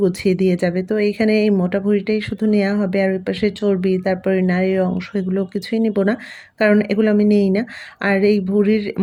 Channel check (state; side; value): identical; both; correlation 1.00